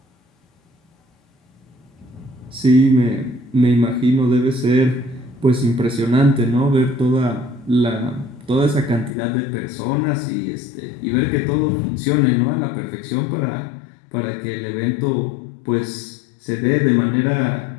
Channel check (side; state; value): right; drops out; at 9.1 s